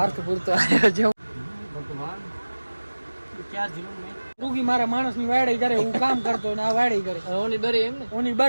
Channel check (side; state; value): both; inverted; correlation -1.00